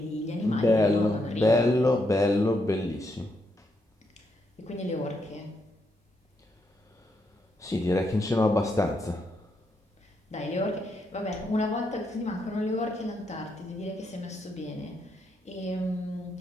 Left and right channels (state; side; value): normal; both; correlation 0.79